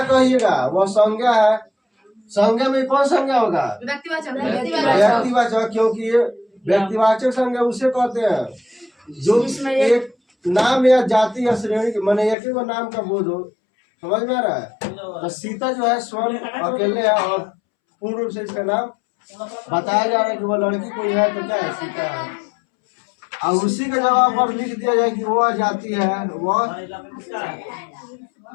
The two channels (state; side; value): drops out; right; at 12.4 s